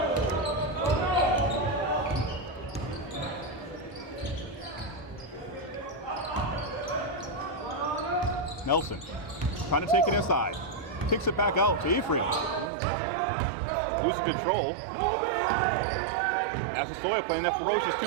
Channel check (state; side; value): drops out; left; at 12.7 s